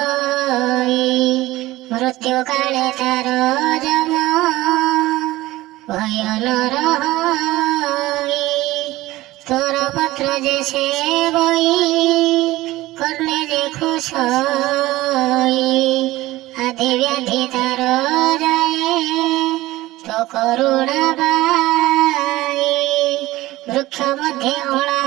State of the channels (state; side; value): quieter; left; 17.7 dB